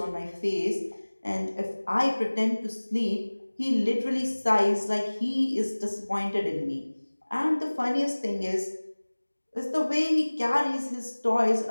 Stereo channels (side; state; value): both; inverted; correlation -1.00